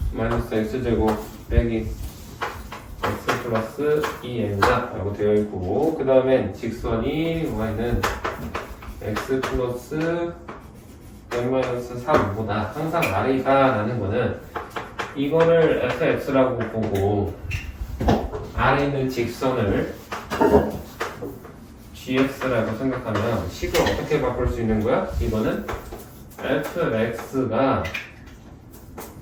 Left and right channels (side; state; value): both; identical; correlation 1.00